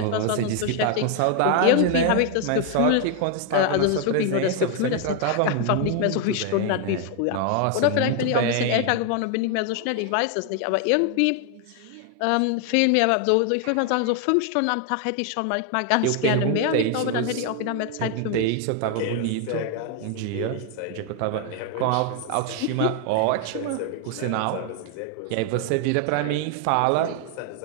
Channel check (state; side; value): different; both; correlation 0.00